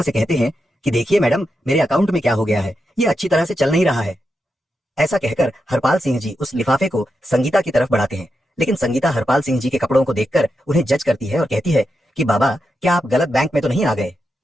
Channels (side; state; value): both; normal; correlation 0.87